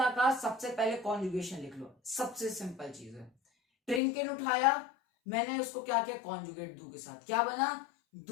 कहा, सबसे पहले कॉन्जुगेशन लिख लो, सबसे सिंपल चीज है। ट्रिंकिन उठाया, मैंने उसको क्या किया, कॉन्जुगेट डू के साथ, क्या बना,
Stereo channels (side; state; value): right; drops out; at 4.0 s